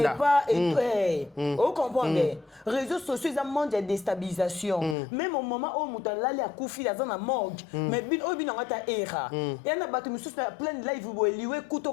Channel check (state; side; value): drops out; right; at 5.0 s